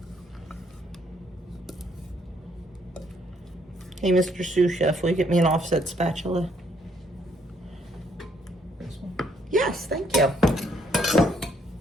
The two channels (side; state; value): both; normal; correlation 0.69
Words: Hey, Mr. Sous Chef, will you get me an offset spatula? This one? Yes, thank you.